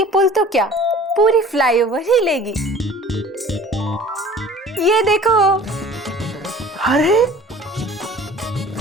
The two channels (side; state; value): both; normal; correlation 0.47